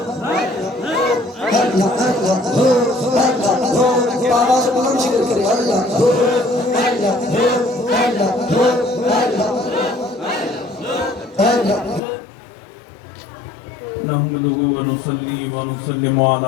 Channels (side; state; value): right; drops out; at 12.0 s